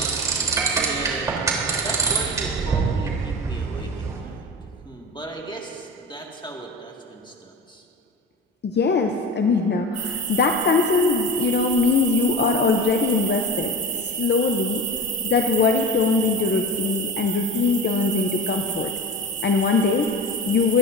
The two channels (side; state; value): both; normal; correlation 0.30